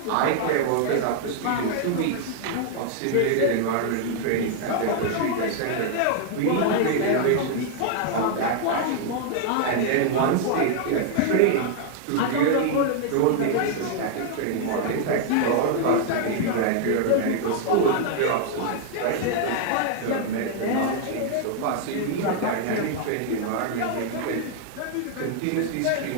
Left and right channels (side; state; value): both; different; correlation 0.00